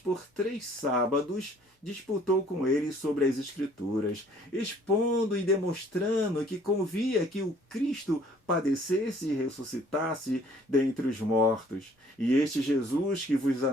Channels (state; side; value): normal; both; correlation 0.58